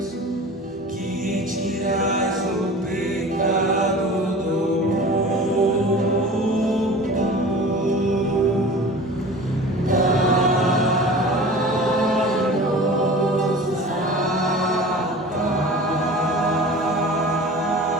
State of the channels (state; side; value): normal; both; correlation 0.39